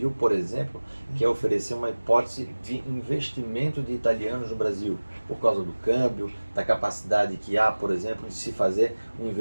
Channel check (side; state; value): both; inverted; correlation -1.00